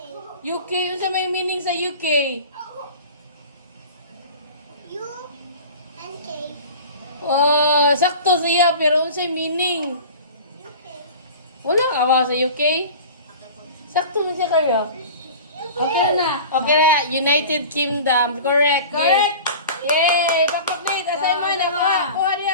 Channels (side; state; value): both; inverted; correlation -0.38